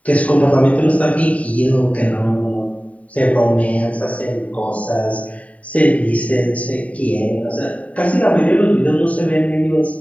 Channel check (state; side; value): late; right; 0.068 ms